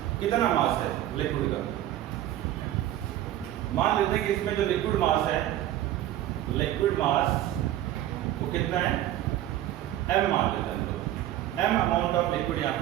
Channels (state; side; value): quieter; left; 13.2 dB